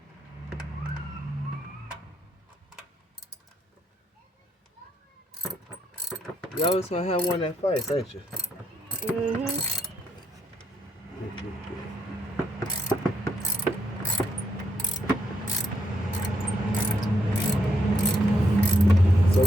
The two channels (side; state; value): both; normal; correlation 0.76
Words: You always gonna have one that fights, ain't you? Mm-hmm. So